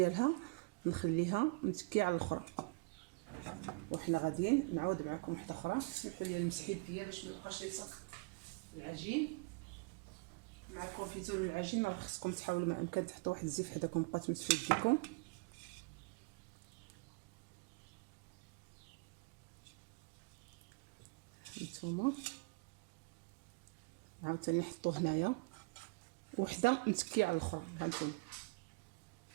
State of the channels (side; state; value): left; quieter; 29.5 dB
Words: نخليها متكيه على الاخرى، وحنا غاديين نعاود معكم وحده اخرى. سمحوا لي نمسح يديا باش ما يبقاش يلصق العجين مع الكونفيتور والعجين. راه خصكم تحاولوا ما امكن تحطوا واحد الزيت حداكم بقاو تمسحوا يديكم. نتوما عاوتاني نحطوه هنايا وحده متكيه على الاخرى. هانتوما